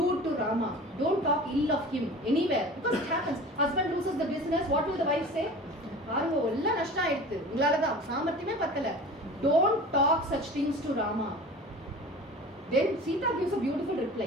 to Rama. Don't talk ill of him anywhere. Because it happens. Husband loses the business. What will the wife say? Don't talk such things to Rama. Then Sita gives a beautiful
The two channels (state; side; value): normal; both; correlation 0.39